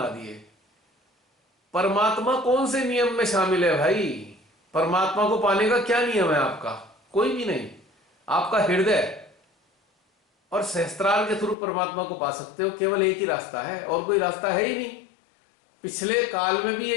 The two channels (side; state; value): right; drops out; at 11.6 s